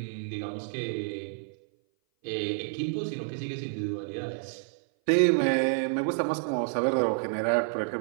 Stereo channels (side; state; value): left; silent; 57 dB below the other